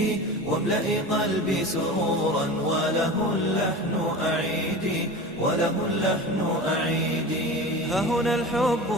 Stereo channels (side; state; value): both; normal; correlation 0.32